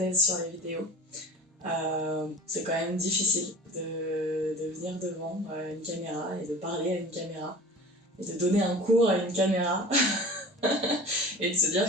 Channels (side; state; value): both; normal; correlation 0.39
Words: sur les vidéos. C'est quand même difficile de venir devant une caméra et de parler à une caméra et de donner un cours à une caméra et de se